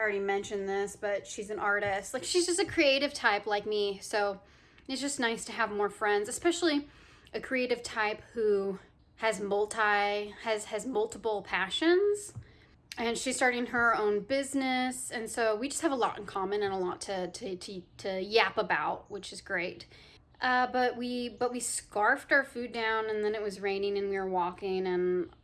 already mentioned this, but she's an artist. Like, she's just a creative type like me. So it's just nice to have more friends, especially a creative type who has multiple passions. And she's starting her own business. And so we just have a lot in common and a lot to yap about, which is great. But we scarfed our food down, and then it was raining and we were walking, and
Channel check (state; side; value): identical; both; correlation 1.00